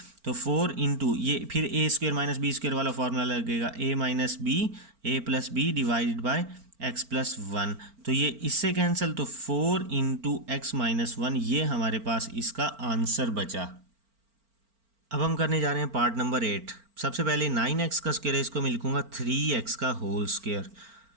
तो 4 इंटू ये फिर a square minus b square वाला फॉर्मूला लगेगा a minus b a plus b divided by x plus 1, तो ये इससे कैंसिल, तो 4 इंटू एक्स माइनस 1, ये हमारे पास इसका आंसर बचा। अब हम करने जा रहे हैं पार्ट नंबर 8। सबसे पहले 9x का स्क्वायर है, इसको मैं लिखूँगा 3x का होल स्क्वायर,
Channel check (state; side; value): late; left; 4.4 ms